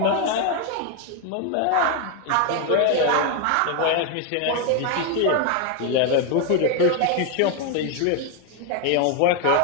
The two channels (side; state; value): both; different; correlation 0.01